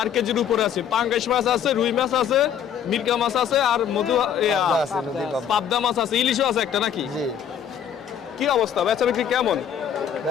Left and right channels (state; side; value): quieter; right; 8.7 dB